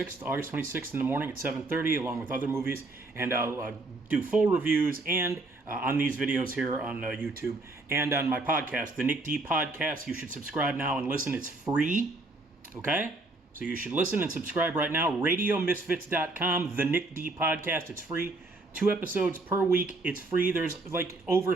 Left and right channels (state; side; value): quieter; left; 3.0 dB